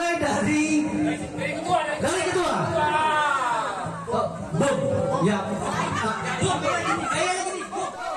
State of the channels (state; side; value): identical; both; correlation 1.00